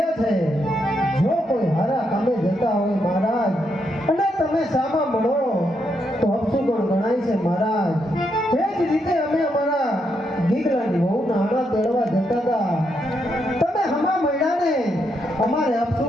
છે. જો કોઈ હારા કામે જતા હોય મહારાજ અને તમે સામા મળો તો અપશુકન ગણાય છે મહારાજ. એ જ રીતે અમે અમારા ગીગલાની વહુના આણા તેડવા જતા હતા. તમે હમા મળ્યા ને અમારે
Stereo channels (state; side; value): normal; both; correlation 0.79